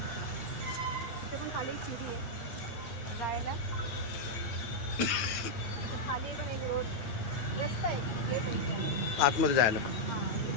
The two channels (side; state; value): right; late; 9.0 ms